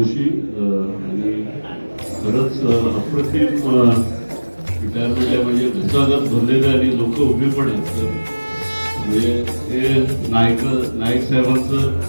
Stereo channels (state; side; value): inverted; both; correlation -1.00